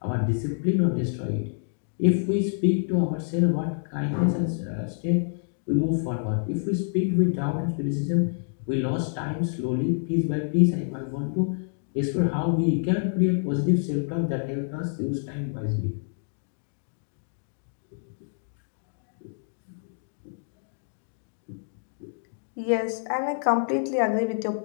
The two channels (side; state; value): right; silent; digital silence